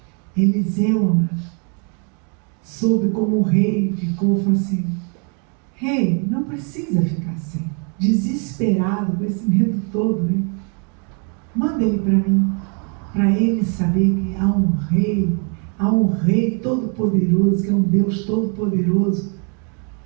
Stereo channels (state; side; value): quieter; left; 38.3 dB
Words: Eliseu soube como o rei ficou, falou assim: rei, não precisa ficar assim, desesperado com esse medo todo, né? Manda ele para mim, para ele saber que há um rei todo-poderoso, que é um Deus todo-poderoso